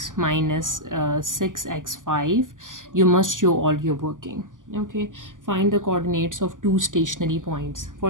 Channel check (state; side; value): late; left; 0.88 ms